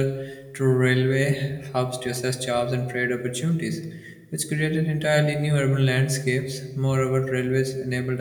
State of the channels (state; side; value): identical; both; correlation 1.00